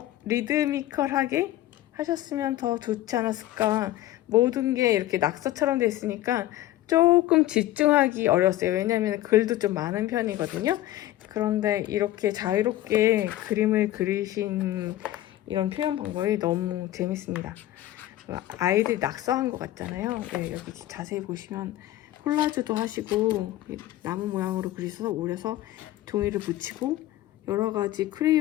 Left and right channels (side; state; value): right; quieter; 14.9 dB